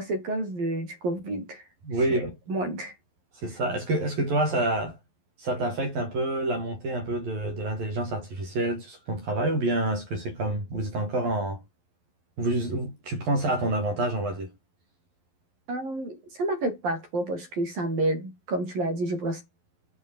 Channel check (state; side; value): late; left; 11 ms